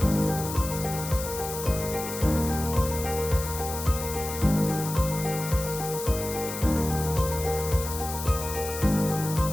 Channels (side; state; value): left; noise; hiss, 8 dB below the sound